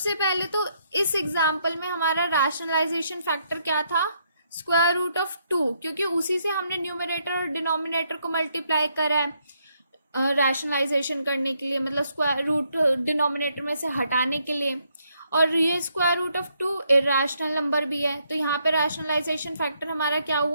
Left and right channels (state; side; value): inverted; both; correlation -0.74